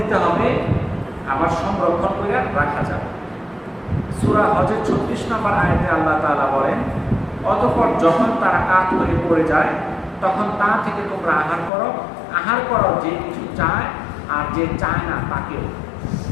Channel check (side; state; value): right; drops out; at 11.7 s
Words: হবে, আবার সংরক্ষণ করে রাখা যাবে। সূরা হজের 36 নম্বর আয়াতে আল্লাহ তাআলা বলেন, অতঃপর যখন তারা কাত হয়ে পড়ে যায় তখন তা থেকে তোমরা আহার করো। আহার করো যে কিছু চায় আর যে চায় না তাকেও।